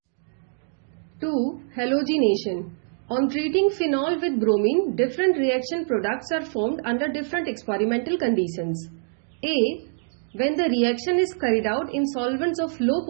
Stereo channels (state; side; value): silent; left; digital silence